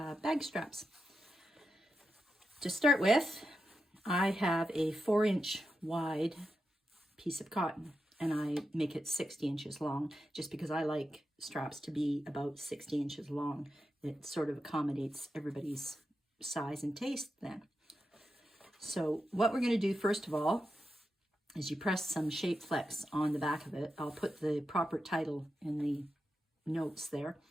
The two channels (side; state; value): both; normal; correlation 0.88